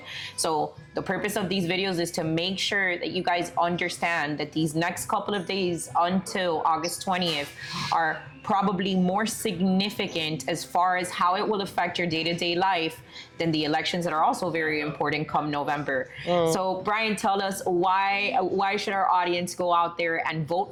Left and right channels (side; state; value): both; identical; correlation 1.00